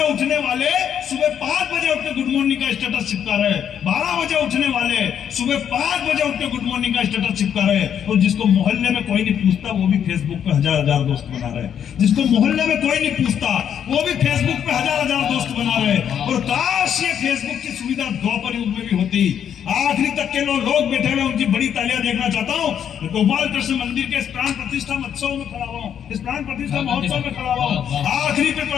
उठने वाले सुबह 5 बजे उठ के गुड मॉर्निंग का स्टेटस चिपका रहे। 12 बजे उठने वाले सुबह 5 बजे उठ के गुड मॉर्निंग का स्टेटस चिपका रहे। और जिसको मोहल्ले में कोई नहीं पूछता वो भी फेसबुक पे हजार दोस्त बना रहे। जिसको मोहल्ले में कोई नहीं पूछता वो भी फेसबुक पे हजार दोस्त बना रहे। और काश ये फेसबुक की सुविधा द्वापर युग में भी होती। आखिरी तक के लोग बैठे हुए उनकी बड़ी तालियां देखना चाहता हूँ। गोपाल कृष्ण मंदिर के इस प्राण प्रतिष्ठा महोत्सव में खड़ा हुआ हूँ, इस प्राण प्रतिष्ठा महोत्सव में खड़ा हुआ हूँ। आखिरी पे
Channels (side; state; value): right; quieter; 8.8 dB